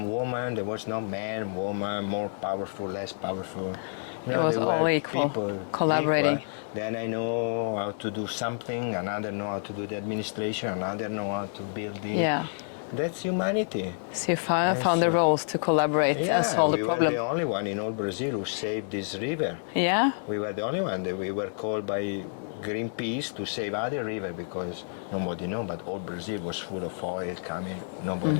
women, there was no man, woman, more powerful, less powerful. They were equal, people collaborating. Equal. Then I know how to do something, another know how to do the administration, another know how to build the... Yeah. That's humanity. So you found the roles to collaborate. Yeah, we were the only one in all Brazil who saved this river. Yeah. We were the only one. We were called by Greenpeace to save other river because nobody knew, but all Brazil was full of oil coming.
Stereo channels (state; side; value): silent; right; digital silence